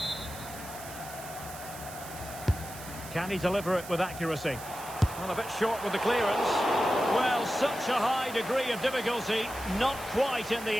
Can he deliver it with accuracy? Well, a bit short with the clearance. Well, such a high degree of difficulty, not quite in the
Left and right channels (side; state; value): right; noise; hiss, 14 dB below the sound